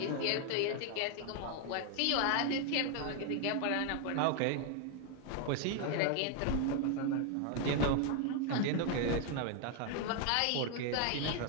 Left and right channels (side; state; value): both; different; correlation 0.00